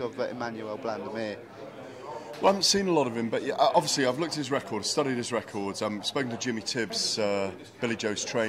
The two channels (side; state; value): both; identical; correlation 1.00